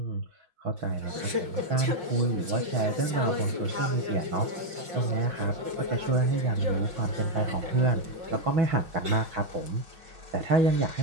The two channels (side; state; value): left; late; 5.6 ms